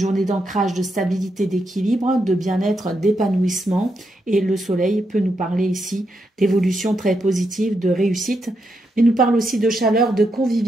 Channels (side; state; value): both; normal; correlation 0.82